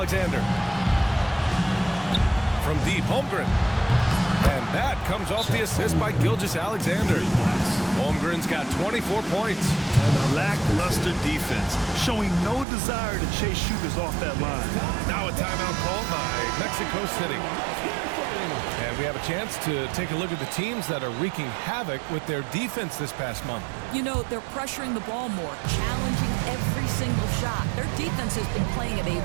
From deep, Holmgren. And that comes off the assist by Gilgeous-Alexander. Holmgren's got 24 points. Lackluster defense, showing no desire to chase shooters off that line. Now a timeout called by Mexico City. And we have a chance to take a look at the teams that are wreaking havoc with their defense this past month. You know, they're pressuring the ball more, challenging every single shot. Their defense has been playing at a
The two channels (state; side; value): drops out; left; at 12.7 s